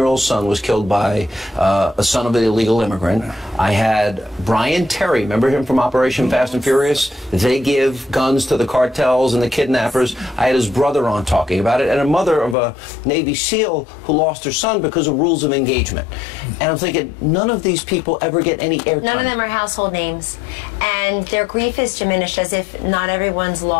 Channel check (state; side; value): drops out; right; at 12.6 s